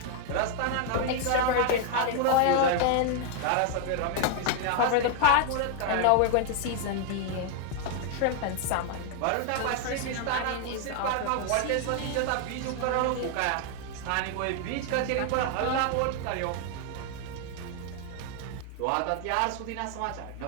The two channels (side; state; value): both; different; correlation 0.00